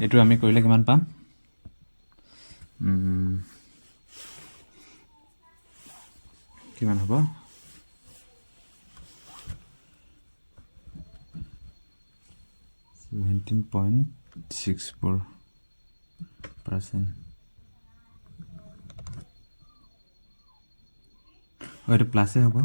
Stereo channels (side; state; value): both; inverted; correlation -1.00